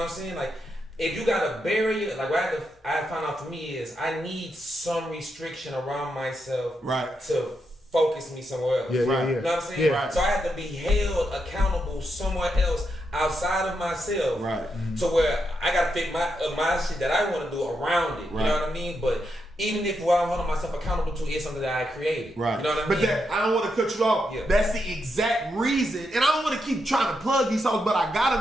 what I'm saying? Like, if you got a barrier, like what I found out for me is I need some restriction around myself to focus me somewhere else. Yeah. You know what I'm saying? Yeah. So I have to be held accountable somewhere else outside of myself. Right. To where I gotta fit my shit that I want to do around it. You know what I mean? But even if what I'm holding myself accountable to is something that I created. Right. You know what I mean? But I don't want to cut you off. Yeah. That's the exact reason. And I don't want to keep trying to plug these songs, but I got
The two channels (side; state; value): both; normal; correlation 0.83